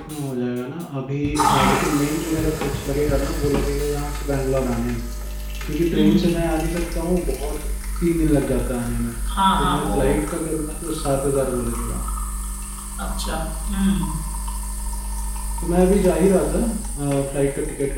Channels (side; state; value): both; identical; correlation 1.00